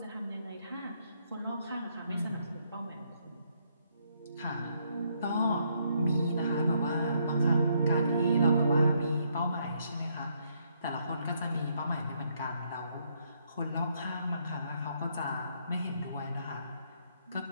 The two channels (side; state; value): both; inverted; correlation -0.73